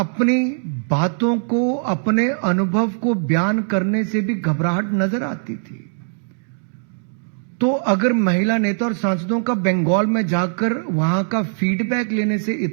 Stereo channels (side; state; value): left; silent; digital silence